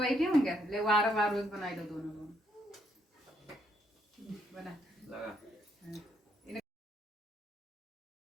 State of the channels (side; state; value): both; normal; correlation 0.73